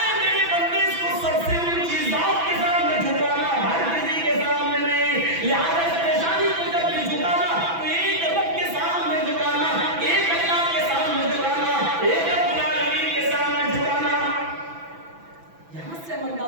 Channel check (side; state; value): left; late; 6.0 ms